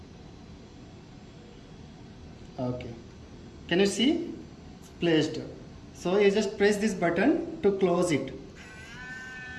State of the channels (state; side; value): identical; both; correlation 1.00